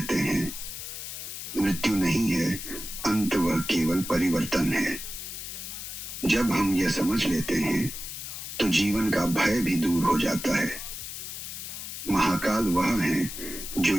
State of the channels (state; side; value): noise; left; hiss, 8 dB below the sound